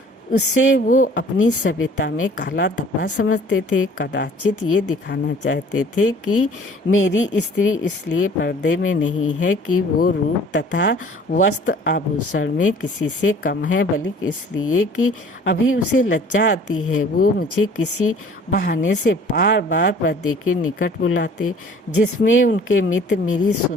उससे वो अपनी सभ्यता में काला धब्बा समझते थे। कदाचित ये दिखाना चाहते थे कि मेरी स्त्री इसलिए पर्दे में नहीं है कि वो रूप तथा वस्त्र आभूषण में किसी से कम है, बल्कि इसलिए कि अभी उसे लज्जा आती है। वो मुझे किसी बहाने से बार बार पर्दे के निकट बुलाते, जिसमें उनके मित्र मेरी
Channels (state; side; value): normal; both; correlation 0.51